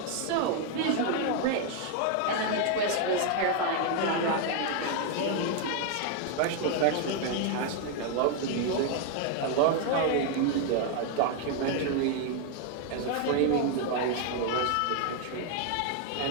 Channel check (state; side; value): different; both; correlation 0.00